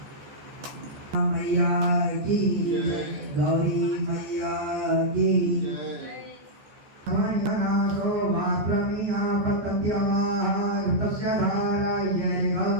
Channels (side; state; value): left; late; 14 ms